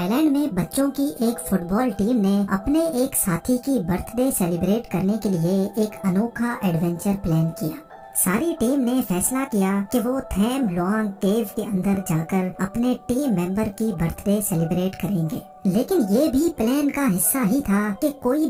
land میں بچوں کی ایک فٹ بال ٹیم نے اپنے ایک ساتھی کی برتھ ڈے سیلیبریٹ کرنے کے لیے ایک انوکھا ایڈونچر پلان کیا۔ ساری ٹیم نے فیصلہ کیا کہ وہ تھیم لوانگ کیو کے اندر جا کر اپنے ٹیم ممبر کی برتھ ڈے سیلیبریٹ کریں گے، لیکن یہ بھی پلان کا حصہ ہی تھا کہ کوئی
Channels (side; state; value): both; identical; correlation 1.00